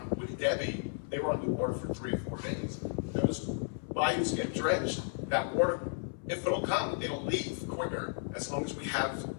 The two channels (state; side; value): silent; right; 55 dB below the other